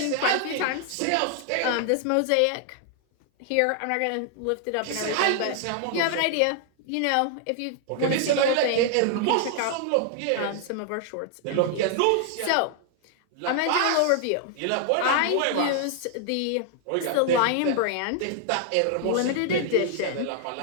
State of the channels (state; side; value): different; both; correlation 0.00